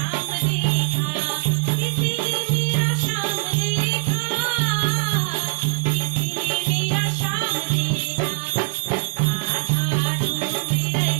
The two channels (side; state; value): left; quieter; 38.8 dB